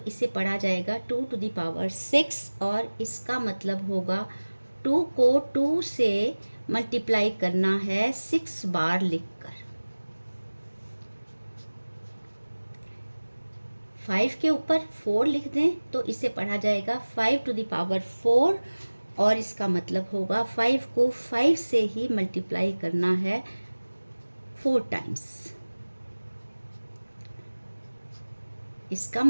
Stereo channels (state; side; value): inverted; both; correlation -1.00